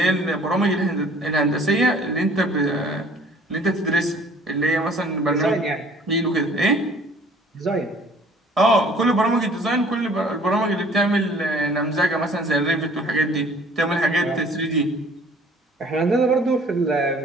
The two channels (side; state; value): both; normal; correlation 0.53